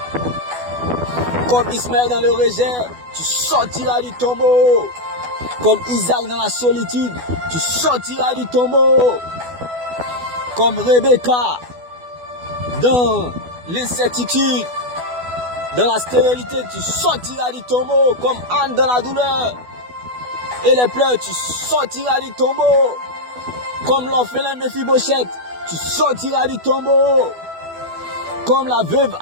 Comme Ismaël dans le rejet, tu sortiras du tombeau. Comme Isaac dans la solitude, tu sortiras du tombeau. Comme Rebecca dans l'incertitude, dans la stérilité, tu sortiras du tombeau. Comme Anne dans la douleur et les pleurs, tu sortiras du tombeau. Comme l'orphelin Mephibosheth, tu sortiras du tombeau. Comme la veuve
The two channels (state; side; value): late; left; 12 ms